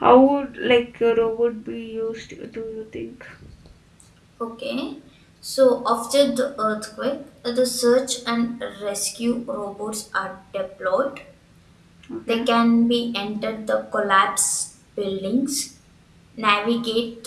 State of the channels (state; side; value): identical; both; correlation 1.00